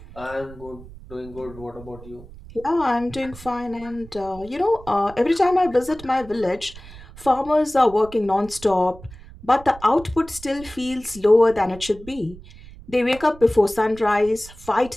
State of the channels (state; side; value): noise; right; rumble, 18 dB below the sound